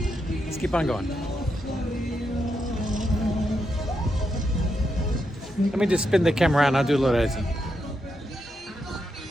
Let's keep on going. Let me just spin the camera around. I'll do a little editing.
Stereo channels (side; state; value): both; normal; correlation 0.83